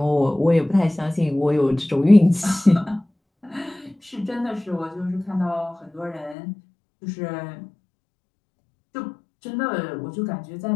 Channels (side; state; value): right; drops out; at 6.4 s